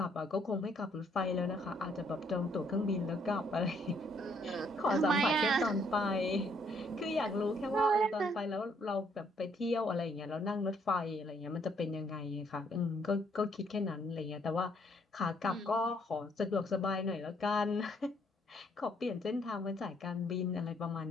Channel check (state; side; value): normal; both; correlation 0.68